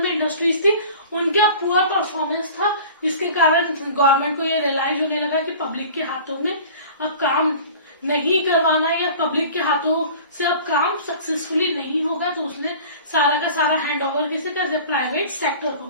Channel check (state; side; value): inverted; both; correlation -0.42